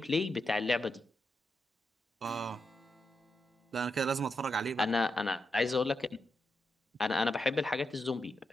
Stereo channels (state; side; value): normal; both; correlation 0.85